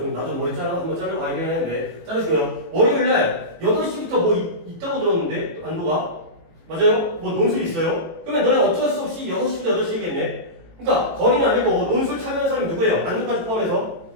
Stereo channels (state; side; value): late; left; 18 ms